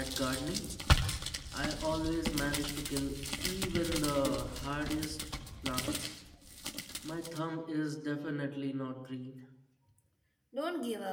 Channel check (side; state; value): both; identical; correlation 1.00